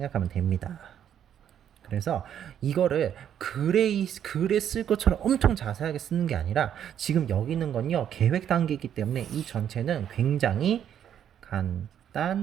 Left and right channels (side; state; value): left; quieter; 9.6 dB